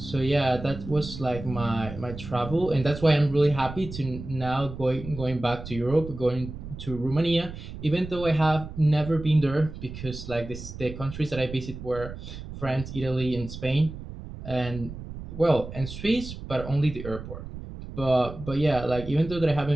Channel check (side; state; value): right; noise; rumble, 11 dB below the sound